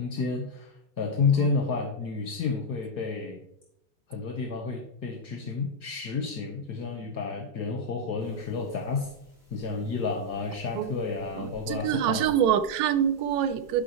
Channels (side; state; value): left; late; 3.1 ms